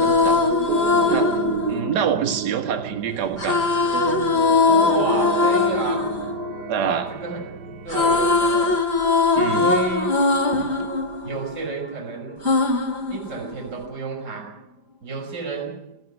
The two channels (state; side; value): late; left; 5.0 ms